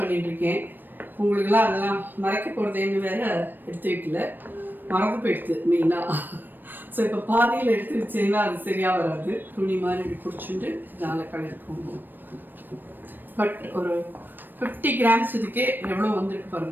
உங்களுக்கெல்லாம் அதெல்லாம் மறைக்க போகிறதேன்னு வேறு எடுத்து வைக்கல, மறந்து போயிடுது மெயினாக. ஸோ இப்போ பாதியில் எடுத்து வச்சீங்கன்னா அது சரியாக வராது. துணி மாதிரி இப்படி பிடிச்சிட்டு இதனால் கலருக்கு போகும். பட் ஒரு 50 கிராம்ஸ் இதுக்கே எவ்வளோ வந்துருக்கு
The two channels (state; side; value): late; left; 0.093 ms